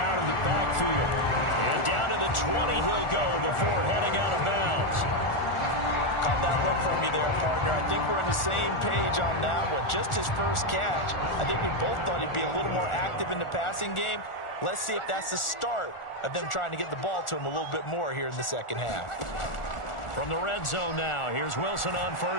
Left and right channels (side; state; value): right; late; 1.4 ms